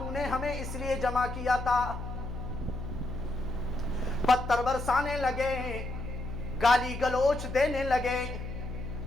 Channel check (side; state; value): left; noise; hum, 7 dB below the sound